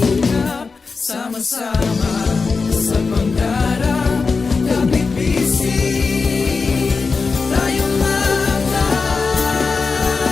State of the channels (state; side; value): quieter; right; 4.6 dB